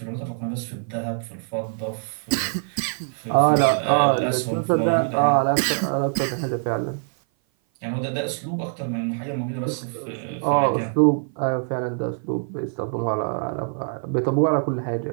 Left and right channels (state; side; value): silent; left; 57 dB below the other